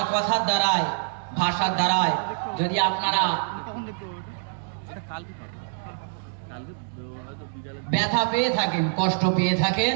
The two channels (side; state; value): left; silent; digital silence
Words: কথার দ্বারায়, ভাষার দ্বারায় যদি আপনারা ব্যথা পেয়ে থাকেন, কষ্ট পেয়ে থাকেন,